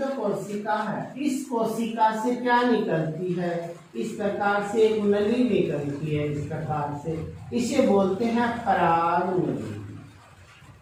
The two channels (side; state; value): both; identical; correlation 1.00